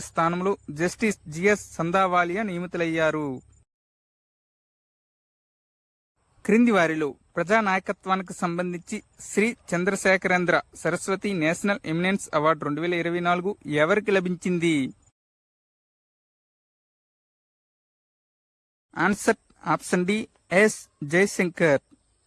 స్థానంలో జస్టిస్ జిఎస్ సందావాలియా నియమితులయ్యారు. క్రింది వారిలో ప్రజానాయకత్వానికి సంబంధించి Shri Chandrasekharendra Saraswati national eminence award 2024 ఎవరికి లభించింది? Answer option D S Jaishankar.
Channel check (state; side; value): identical; both; correlation 1.00